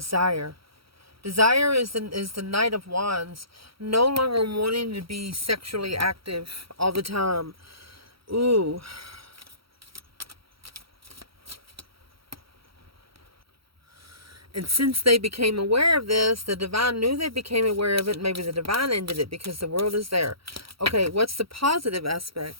Desire is the Knight of Wands. No longer wanting to be sexually active all the time. Ooh. And since they became aware of this, the divine knew they became aware of it. Maybe the divine ended it because the world is there. Okay, what's the positive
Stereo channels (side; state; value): left; late; 0.75 ms